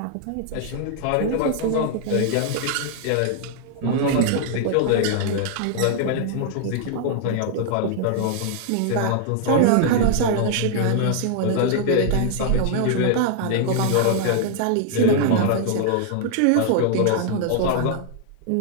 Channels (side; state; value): both; different; correlation 0.00